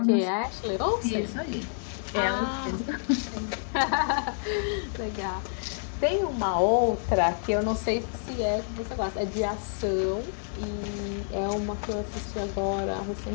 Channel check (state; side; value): silent; right; digital silence